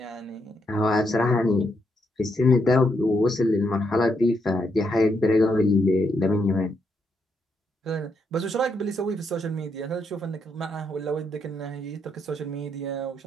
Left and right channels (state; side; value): normal; both; correlation 0.78